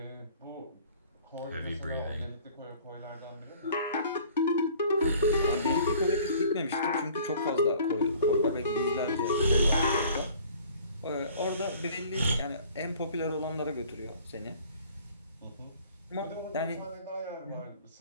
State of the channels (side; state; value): both; inverted; correlation -0.51